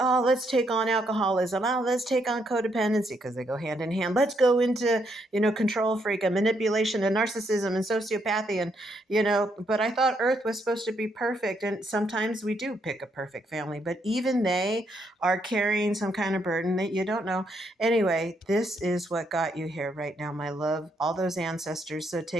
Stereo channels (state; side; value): normal; both; correlation 0.75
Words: let's take on alcoholism. Oh, let's take on codependency because they go hand in hand. Let's go into control freak and manipulation and narcissism and sociopathy but I thought Earth was supposed to be perfect. And sometimes we do pick a perfect family, but even they are carrying some kind of burden that you don't know. Anyway, this is what got you here right now, my love, all those ancestors. So